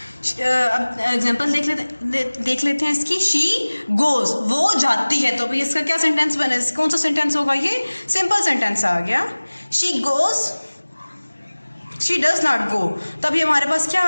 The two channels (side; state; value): both; inverted; correlation -1.00